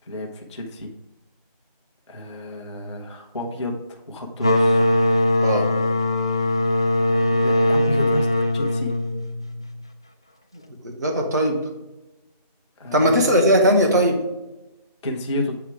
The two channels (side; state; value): both; inverted; correlation -0.69